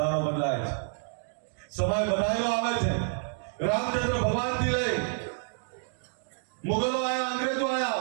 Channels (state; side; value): silent; left; 59 dB below the other